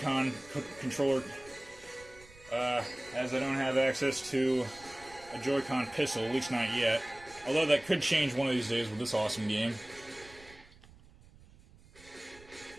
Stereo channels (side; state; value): right; noise; rumble, 23 dB below the sound